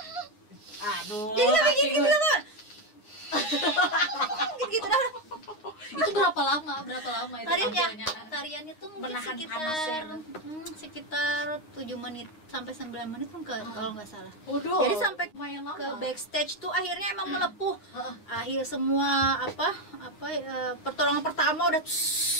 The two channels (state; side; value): late; right; 9.6 ms